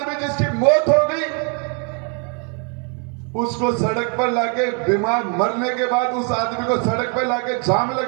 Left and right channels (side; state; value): left; quieter; 37.4 dB